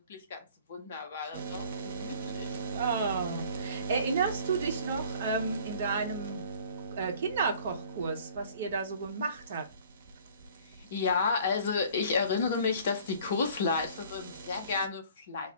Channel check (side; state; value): both; inverted; correlation -0.52